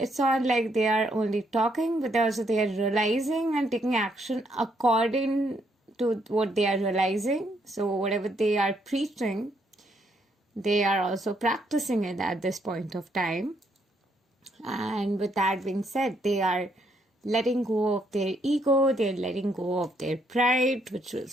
not like they are only talking, but also they are realizing and taking action according to what they are realizing. So whatever they are preaching, they are also practicing it at this point of time. And with that being said, they are letting go of their ego, they're letting go of their pride, which was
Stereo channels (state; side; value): normal; both; correlation 0.73